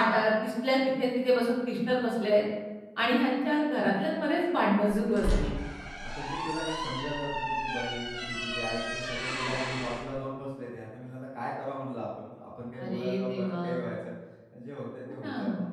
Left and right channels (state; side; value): identical; both; correlation 1.00